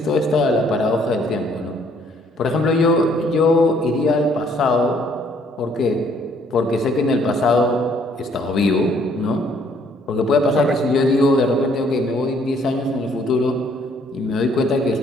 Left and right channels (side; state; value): both; normal; correlation 0.64